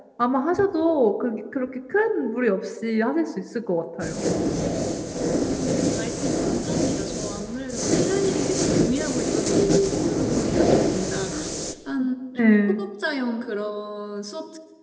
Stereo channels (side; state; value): both; identical; correlation 1.00